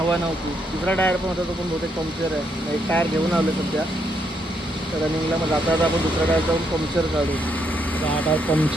नव्हती. दुसरा टायर पण होता तो पण बहुतेक पंक्चर आहे. एक टायर घेऊन आलो सध्या रनिंगला. मग जाता आपण दुसरा टायर जाऊन पंक्चर काढू. हा टायर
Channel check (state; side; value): normal; both; correlation 0.76